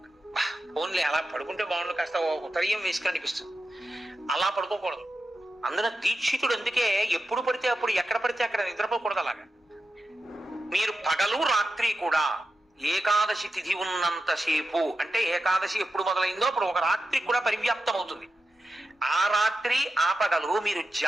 ఓన్లీ అలా పడుకుంటే బాగుండు, కాస్త ఉత్తరీయం వేసుకుని అనిపిస్తుంది. అలా పడుకోకూడదు. అందున దీక్షితుడు అందుకే ఎప్పుడు పడితే అప్పుడు, ఎక్కడ పడితే అక్కడ నిద్రపోకూడదు. అలాగా మీరు పగలు రాత్రి కూడా ఏకాదశి తిథి ఉన్నంతసేపు, అంటే ఏకాదశి ఎప్పుడు మొదలైందో అప్పుడు ఒక రాత్రి కూడా పరివ్యాప్తం అవుతుంది. ఆ రాత్రి ఆ పగలు మీరు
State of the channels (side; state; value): both; normal; correlation 0.90